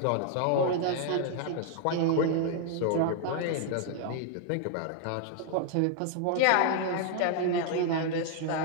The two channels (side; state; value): both; different; correlation 0.00